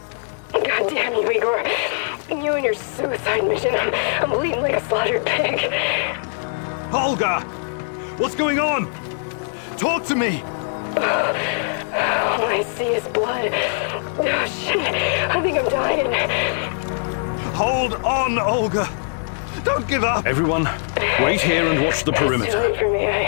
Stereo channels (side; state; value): right; silent; digital silence